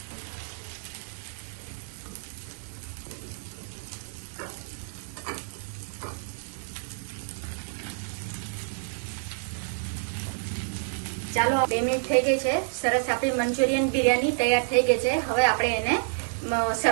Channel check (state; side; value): silent; left; digital silence